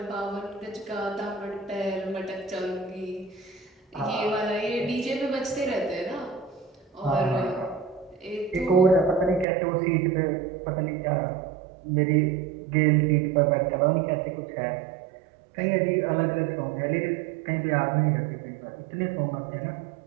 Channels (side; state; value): left; drops out; at 9.5 s